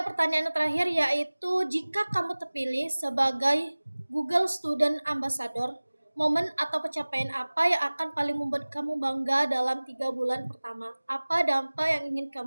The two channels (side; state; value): both; inverted; correlation -1.00